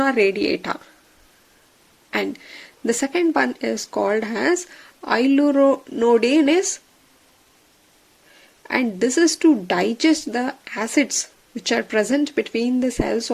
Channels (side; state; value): both; identical; correlation 1.00